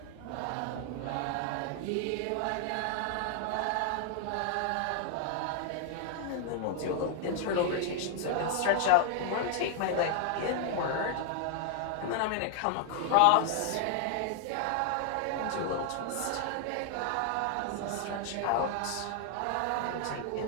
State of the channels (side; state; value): both; different; correlation 0.00